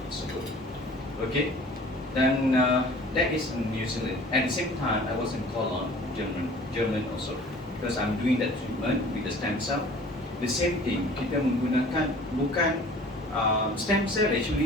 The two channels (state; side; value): normal; both; correlation 0.47